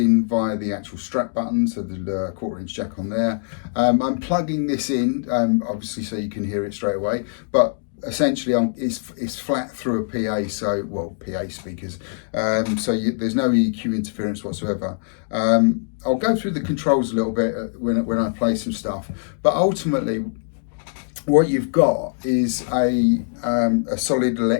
via the actual strap button, so the 1/4" jack on there. I'm plugging this in obviously so you can hear it straight away, but essentially it's flat through a PA, PA speakers, there's no EQ interference whatsoever. I'll go through the controls a little bit when I play some stuff, but ultimately what you've got is a solid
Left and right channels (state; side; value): silent; right; digital silence